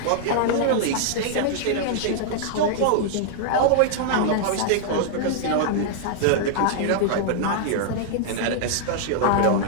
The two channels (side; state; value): both; different; correlation -0.01